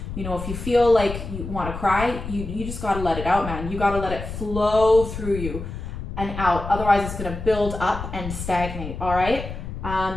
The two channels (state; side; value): noise; left; rumble, 8 dB below the sound